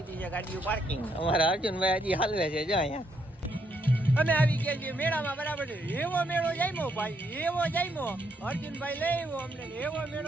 છે ગાડીઓ પાર્કિંગ. અમારા અર્જુનભાઈ હજી હાલવે છે જો અહીંયા. અમે આવી ગયા છીએ મેળામાં બરાબર. એવો મેળો જામ્યો ભાઈ, એવો જામ્યો. અર્જુનભાઈ લઈ આવ્યો અમને. એવો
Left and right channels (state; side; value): normal; both; correlation 0.74